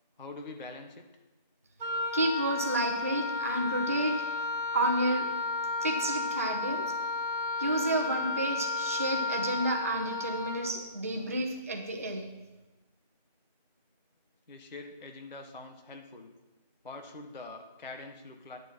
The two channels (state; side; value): inverted; both; correlation -0.40